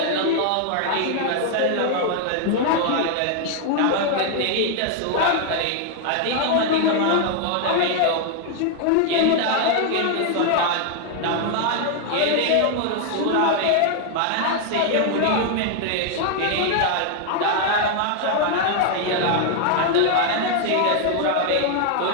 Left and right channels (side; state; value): both; different; correlation 0.00